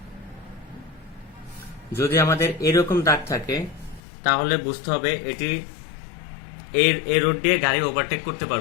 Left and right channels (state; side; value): drops out; right; at 4.0 s